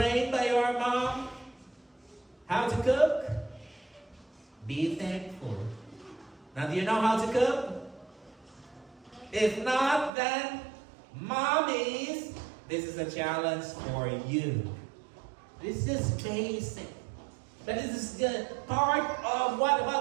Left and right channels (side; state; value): left; drops out; at 10.1 s